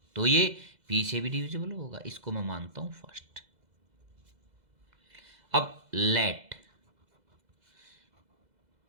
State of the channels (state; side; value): late; left; 2.0 ms